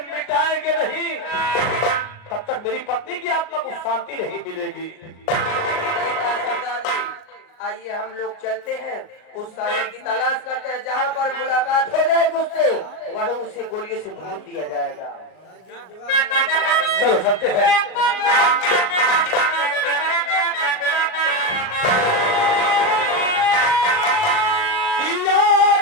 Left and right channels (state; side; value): late; right; 38 ms